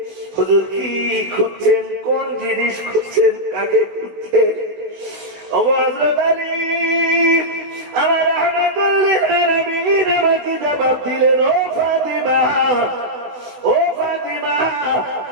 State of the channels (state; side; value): late; left; 16 ms